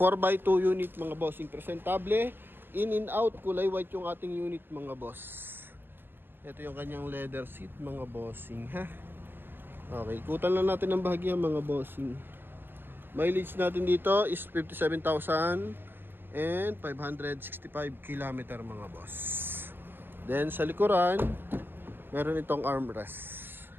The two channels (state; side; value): late; left; 0.10 ms